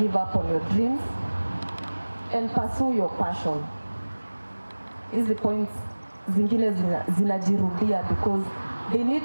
up on your dreams. And pursue your passion. Hizi points zingine zinajirudia because they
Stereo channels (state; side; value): inverted; both; correlation -1.00